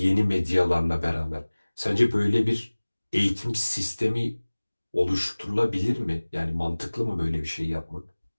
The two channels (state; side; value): inverted; both; correlation -1.00